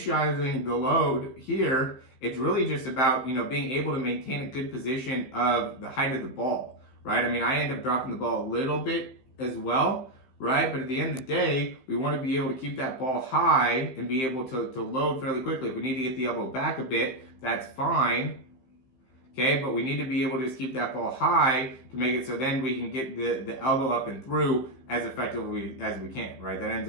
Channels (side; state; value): right; late; 15 ms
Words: the load here, it's really just about being able to maintain a good position of the height of the ball, right? I mean, I end up dropping the ball a little bit as well, right? But at the end of the day, we want to be able to keep that ball high and be able to load fairly quickly. If we need to get the elbow back a bit, that's fine, okay? But we need to be able to just keep that ball high to make it so then we can get the elbow up and through as effectively as we can, right? That ends